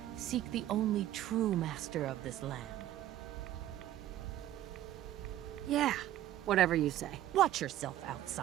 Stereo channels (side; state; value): left; quieter; 13.1 dB